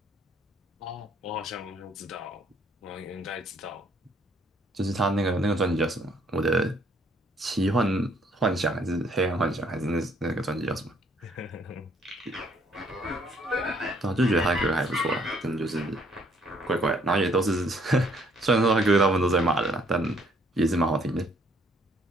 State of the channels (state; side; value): normal; both; correlation 0.65